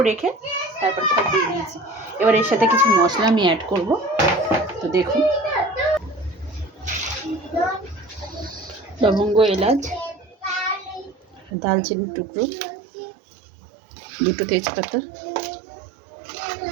রেখে তারপর সব দিয়ে দিয়েছি। এবার এর সাথে কিছু মশলা আমি অ্যাড করব। তো দেখুন, লবঙ্গ, এলাচ, দালচিনির টুকরো, দুটো তেজপাতা,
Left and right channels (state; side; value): drops out; left; at 11.5 s